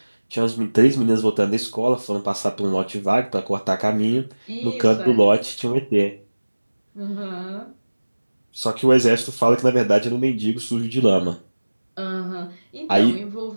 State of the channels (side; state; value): both; inverted; correlation -1.00